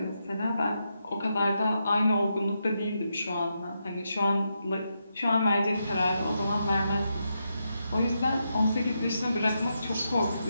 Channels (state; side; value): inverted; both; correlation -0.84